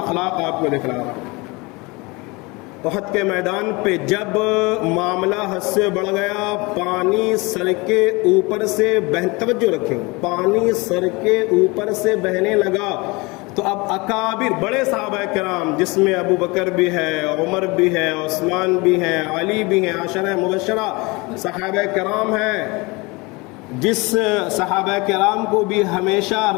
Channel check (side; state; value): right; quieter; 25.6 dB